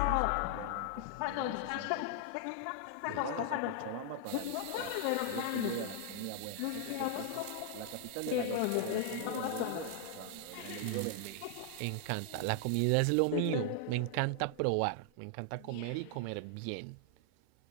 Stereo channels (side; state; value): both; different; correlation 0.00